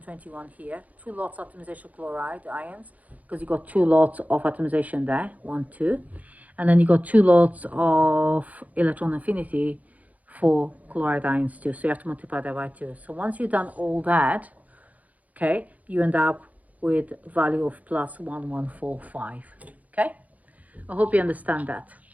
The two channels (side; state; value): left; late; 0.075 ms